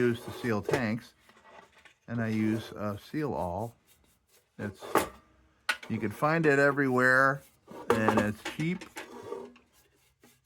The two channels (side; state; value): both; identical; correlation 1.00